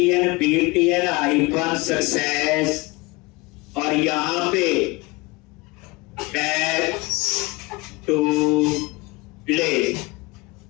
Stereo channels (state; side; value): quieter; right; 24.4 dB